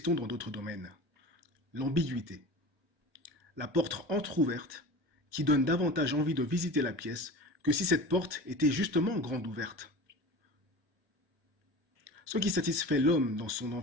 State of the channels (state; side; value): late; left; 1.2 ms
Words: dans d'autres domaines. L'ambiguïté. La porte entr'ouverte qui donne davantage envie de visiter la pièce que si cette porte était justement grande ouverte. Ce qui satisfait l'homme dans son